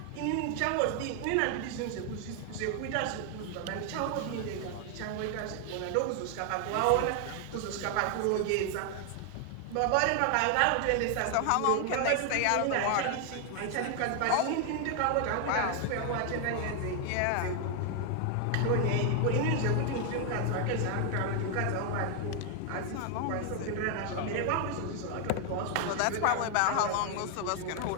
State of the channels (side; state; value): both; different; correlation 0.00